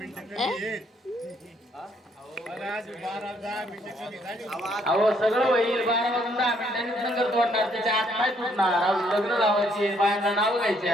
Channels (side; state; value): both; normal; correlation 0.68